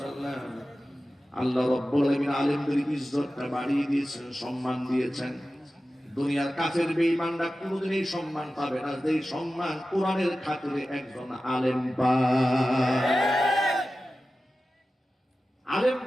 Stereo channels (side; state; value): both; normal; correlation 0.94